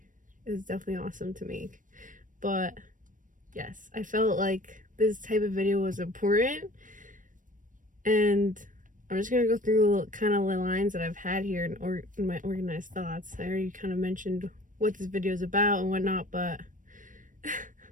awesome to make. But yes, I felt like this type of video was important, and I'm just gonna go through kind of the lines that I've had here in my organized thoughts. I already kind of mentioned what this video is about and whatnot, but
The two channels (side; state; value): left; late; 0.38 ms